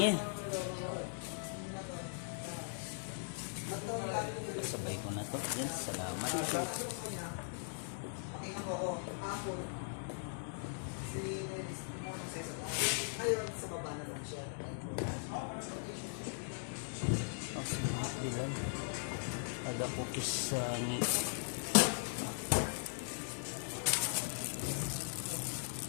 Sabay ko na to. Yan, salamat. Pakinggan mo ako. Apple. Ngayon, sa baba na lang siya. Oh, salamat bilang. Ada cookies sa ni.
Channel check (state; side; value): silent; right; digital silence